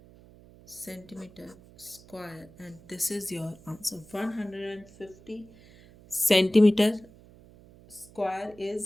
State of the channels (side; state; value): right; noise; hum, 23 dB below the sound